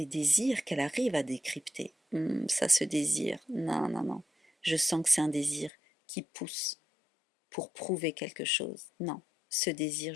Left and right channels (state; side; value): drops out; right; at 5.7 s